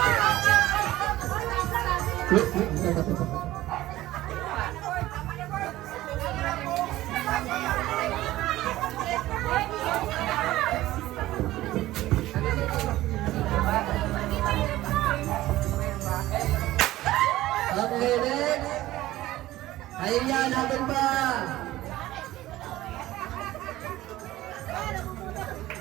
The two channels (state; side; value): quieter; left; 16.0 dB